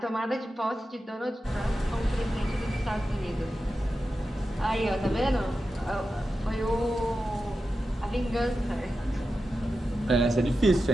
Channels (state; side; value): normal; both; correlation 0.92